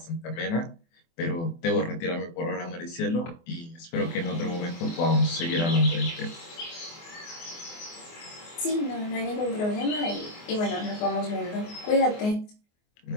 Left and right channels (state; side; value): late; right; 24 ms